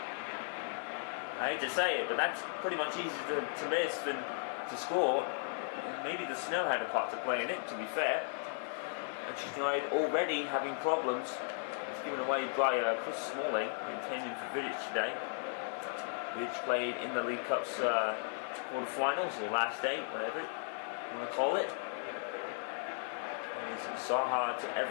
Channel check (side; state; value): right; silent; 54 dB below the other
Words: I hate to say it, but that's pretty much easier to miss than to score. Maybe the snow had a part to play in it, to be fair. Manchester United already having problems. It's given away by Chris Smalling, intending for Vidic today. Vidic played in the League Cup's quarter-finals, or last day, whatever you want to call it. And it's Zaha to